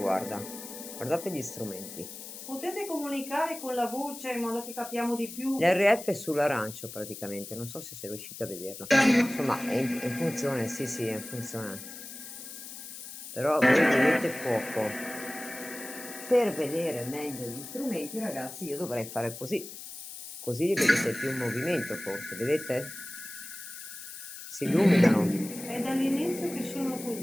Guardate gli strumenti. Potete comunicare con la voce in modo che capiamo di più? L'RF è sull'arancio praticamente, non so se sei riuscito a vederlo. Insomma, è in funzione, sì, sì, è in funzione. Però voi vedete poco. Per vedere meglio gli strumenti, ragazzi, io dovrei fare così. Così li vedete più in movimento, forse, vedete? Si illuminano. È dall'inizio che sono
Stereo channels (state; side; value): noise; left; hiss, 12 dB below the sound